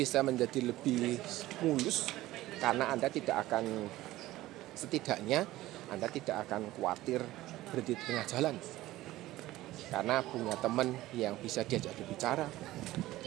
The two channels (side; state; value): left; quieter; 16.5 dB